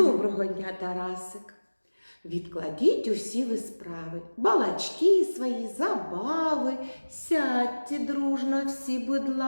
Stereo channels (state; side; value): inverted; both; correlation -1.00